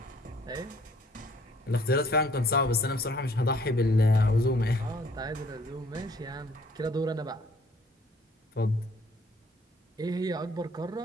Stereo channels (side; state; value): both; normal; correlation 0.59